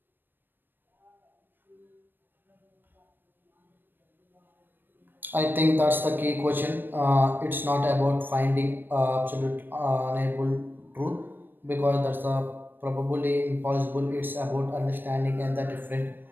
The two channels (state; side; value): late; left; 0.094 ms